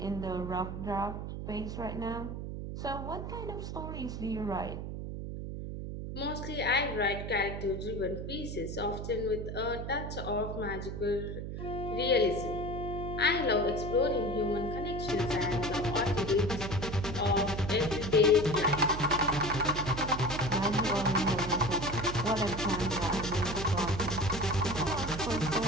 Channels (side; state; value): right; noise; hum, 6 dB below the sound